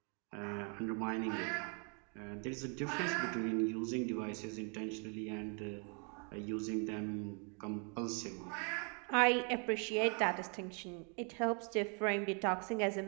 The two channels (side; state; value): left; quieter; 37.8 dB